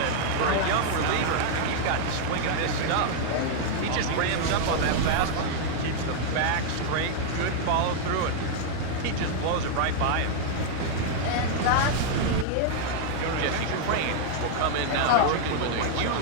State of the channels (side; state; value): both; different; correlation 0.00